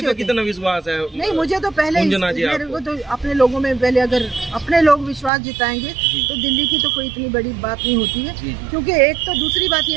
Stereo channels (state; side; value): drops out; left; at 5.3 s